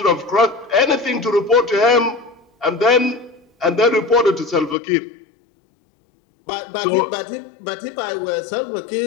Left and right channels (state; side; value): drops out; right; at 4.8 s